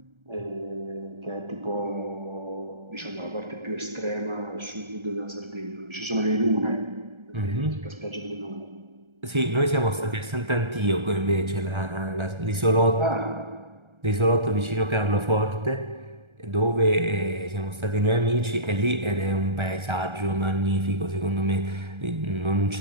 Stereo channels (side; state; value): left; late; 1.3 ms